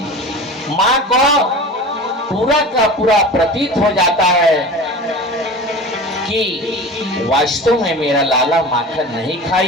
माँ को पूरा का पूरा प्रतीत हो जाता है कि वास्तव में मेरा लाला माखन नहीं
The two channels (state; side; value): normal; both; correlation 0.35